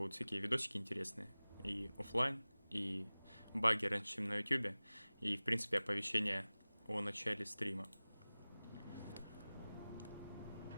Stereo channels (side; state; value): both; inverted; correlation -0.98